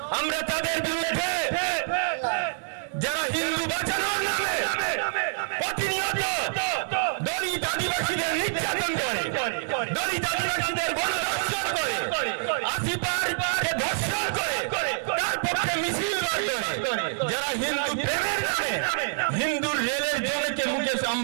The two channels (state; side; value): silent; left; 60 dB below the other